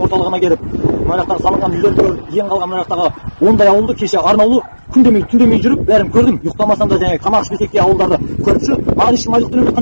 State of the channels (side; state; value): both; inverted; correlation -1.00